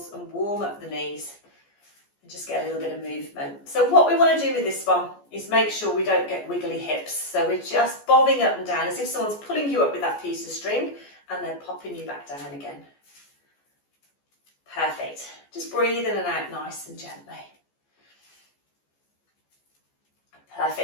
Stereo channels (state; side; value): late; right; 14 ms